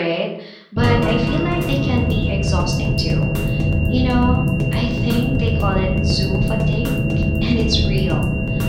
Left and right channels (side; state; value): both; identical; correlation 1.00